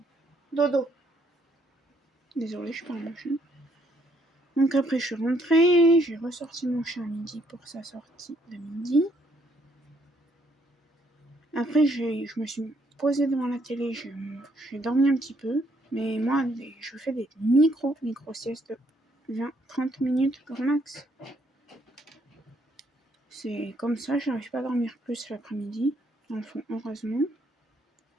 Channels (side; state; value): both; normal; correlation 0.70